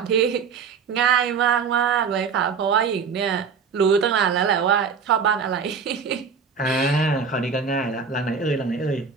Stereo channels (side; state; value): left; quieter; 6.0 dB